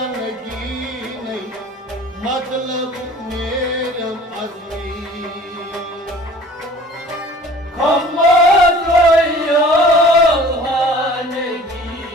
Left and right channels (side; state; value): both; normal; correlation 0.47